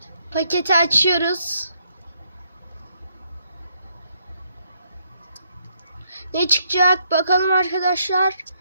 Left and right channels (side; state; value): both; inverted; correlation -0.75